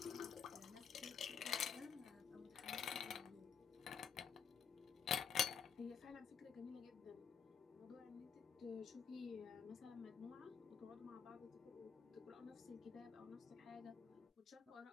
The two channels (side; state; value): right; quieter; 6.9 dB